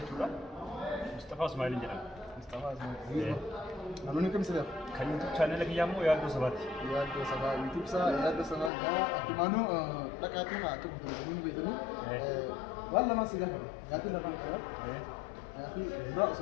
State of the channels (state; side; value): drops out; right; at 8.7 s